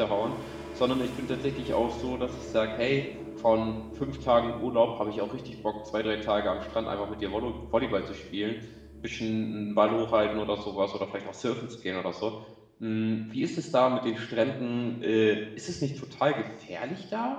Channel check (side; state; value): both; identical; correlation 1.00